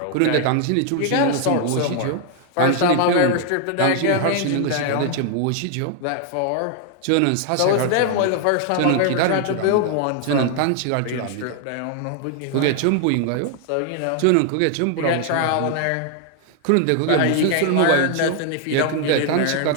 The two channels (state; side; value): different; both; correlation 0.00